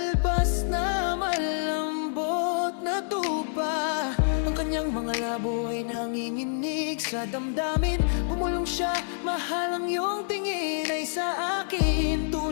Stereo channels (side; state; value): right; silent; digital silence